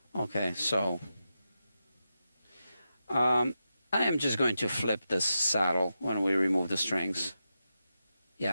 Okay, so I am just going to flip this saddle when we remove the strings.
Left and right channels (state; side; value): inverted; both; correlation -0.89